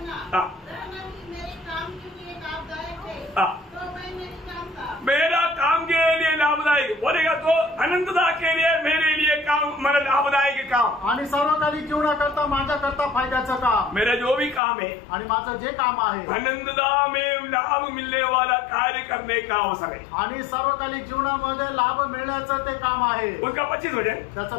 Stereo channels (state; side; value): drops out; right; at 14.6 s